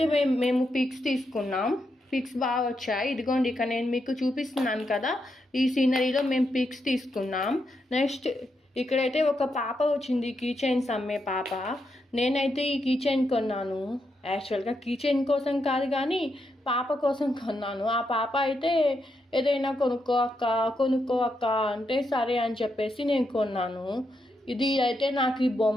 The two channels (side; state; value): both; normal; correlation 0.82